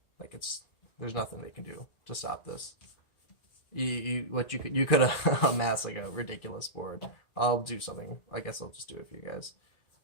Like, there's nothing they can do to stop this. You could have amassed like a ridiculous board. I'll do something. I guess I'll just do it for you guys.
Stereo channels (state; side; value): late; right; 2.4 ms